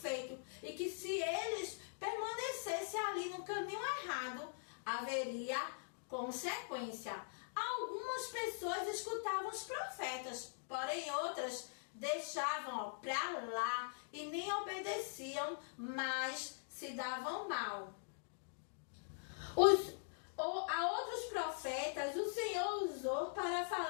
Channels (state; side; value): silent; right; digital silence